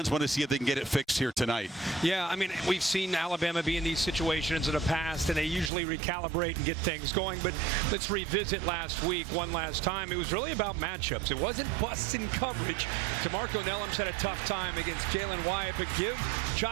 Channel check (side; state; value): left; drops out; at 5.7 s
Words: want to see if they can get it fixed here tonight. Yeah, I mean, we've seen Alabama be in these situations in the past, and they usually recalibrate and get things going. But let's revisit last week one last time. It was really about matchups. It wasn't busts in coverage. DeMarco Nellums had a tough time against Jalen Wyatt, but give